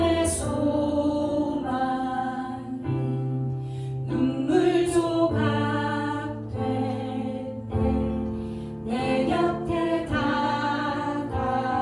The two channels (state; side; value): identical; both; correlation 1.00